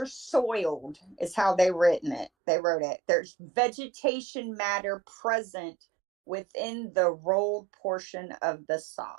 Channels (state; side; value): drops out; left; at 2.3 s